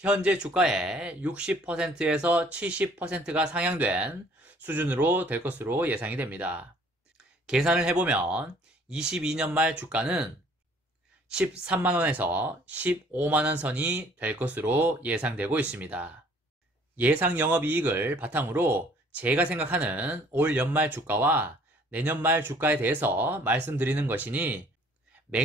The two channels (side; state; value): both; normal; correlation 0.57